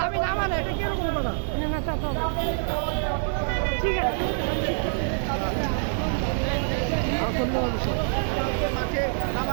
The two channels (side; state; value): left; silent; 57 dB below the other